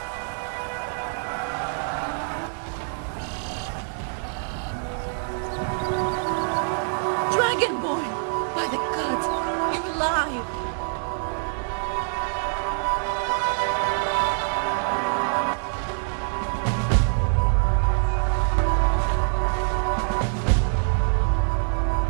Dragonborn! By the gods, you're alive!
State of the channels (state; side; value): silent; left; digital silence